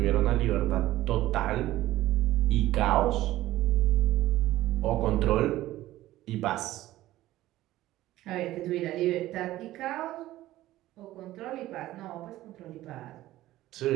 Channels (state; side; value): quieter; left; 15.5 dB